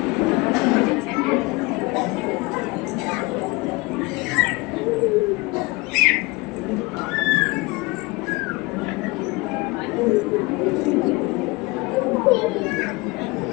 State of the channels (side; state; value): right; quieter; 24.2 dB